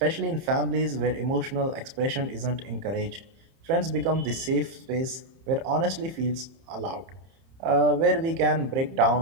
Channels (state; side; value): late; left; 30 ms